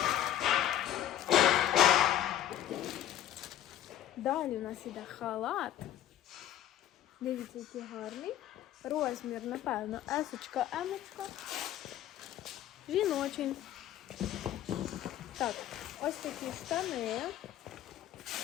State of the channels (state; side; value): quieter; right; 12.0 dB